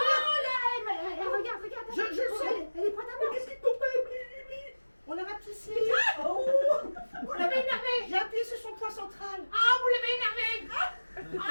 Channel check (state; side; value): inverted; both; correlation -1.00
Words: là, regarde. Je le sais. Elle est prête à mort. Qu'est-ce qui tombe? On l'a rapetissé. Oh! Vous l'avez énervé. J'ai appuyé sur son point central. Ah, vous l'avez énervé.